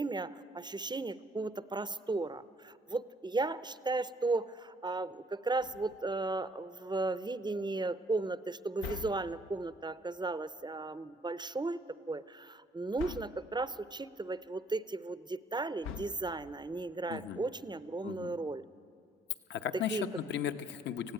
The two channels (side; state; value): both; normal; correlation 0.64